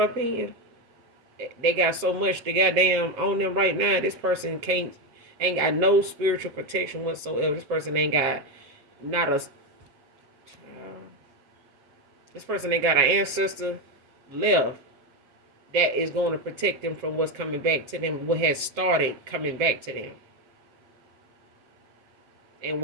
up in. They got so much they goddamn on them right now. This person ain't got no spiritual protection whatsoever. This person ain't got not a this person ain't got an ancestor left that is going to protect them from what's coming back to them, what has started coming back to them. And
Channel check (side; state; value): left; late; 7.8 ms